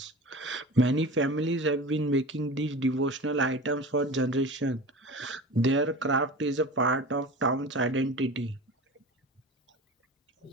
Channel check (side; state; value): both; normal; correlation 0.34